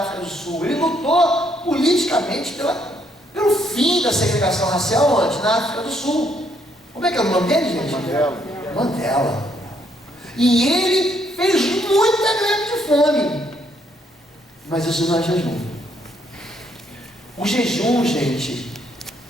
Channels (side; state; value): both; normal; correlation 0.71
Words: do Sul. Ele lutou politicamente pelo fim da segregação racial onde? Na África do Sul. Como é que é o nome dele, gente? Mandela. Mandela. E ele fez muita greve de fome. Mas isso não é jejum. O jejum, gente,